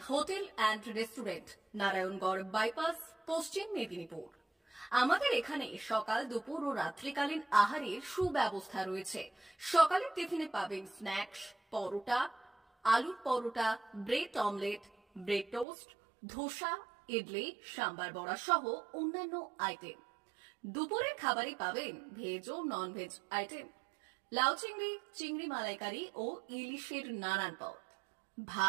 hotel and restaurant, Narayangarh bypass, পশ্চিম মেদিনীপুর। আমাদের এখানে সকাল, দুপুর ও রাত্রিকালীন আহারের সুব্যবস্থা রয়েছে। সকালের টিফিনে পাবেন স্ন্যাক্স, পরোটা, আলুর paratha, bread omelette, bread toast, dosa, idli, sambar vada সহ অন্যান্য আইটেম। দুপুরের খাবারে পাবেন ভেজ ও নন ভেজ আইটেম, লাউ চিংড়ি, চিংড়ি মালাইকারি ও ইলিশের নানান পদ,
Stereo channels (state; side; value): drops out; left; at 15.7 s